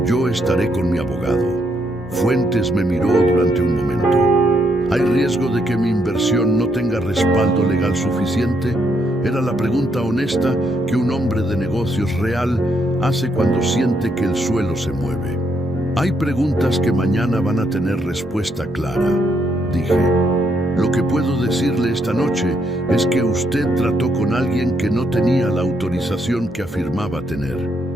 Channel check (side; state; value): both; normal; correlation 0.75